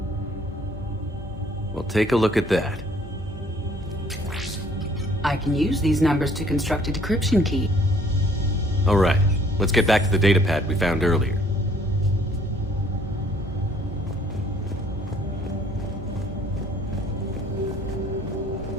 Well, take a look at that. I can use these numbers to construct a decryption key. All right, let's get back to the datapad we found earlier.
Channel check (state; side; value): normal; both; correlation 0.59